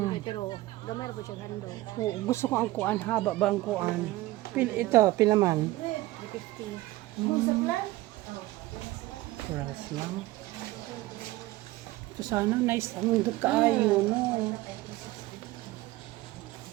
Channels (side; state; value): left; quieter; 17.8 dB